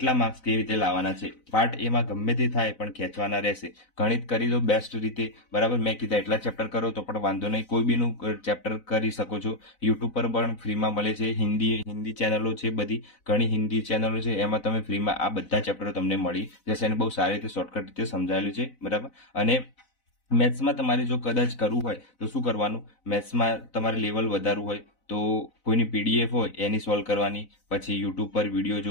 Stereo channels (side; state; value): right; late; 4.0 ms